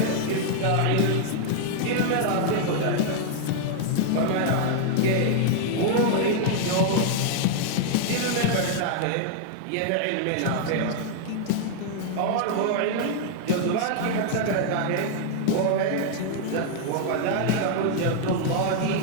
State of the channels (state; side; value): different; both; correlation 0.00